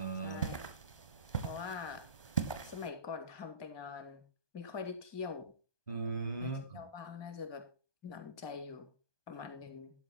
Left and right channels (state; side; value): late; right; 1.2 ms